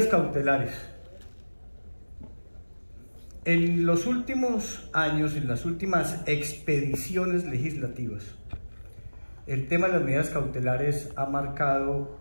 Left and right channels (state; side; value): inverted; both; correlation -1.00